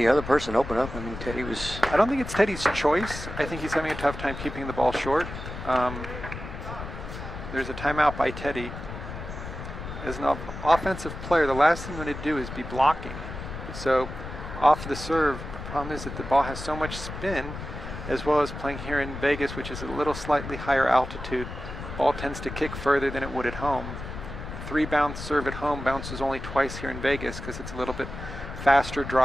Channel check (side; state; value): left; noise; rumble, 9 dB below the sound